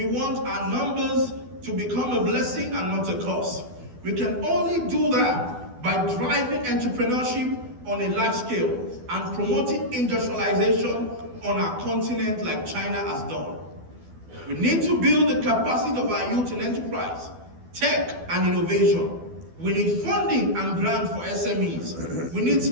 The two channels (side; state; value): left; late; 12 ms